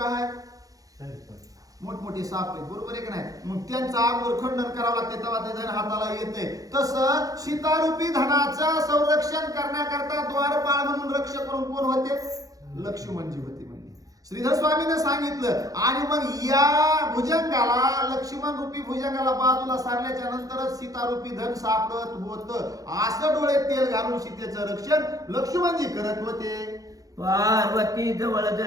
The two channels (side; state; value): left; late; 0.17 ms